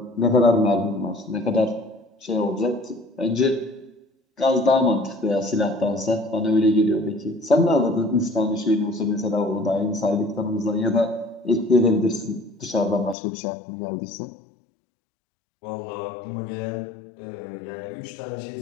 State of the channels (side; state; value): right; drops out; at 13.2 s